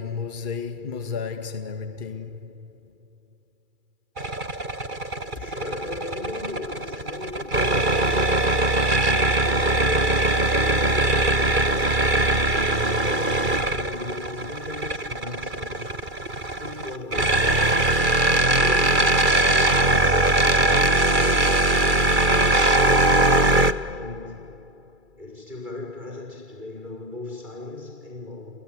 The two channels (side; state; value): left; late; 2.3 ms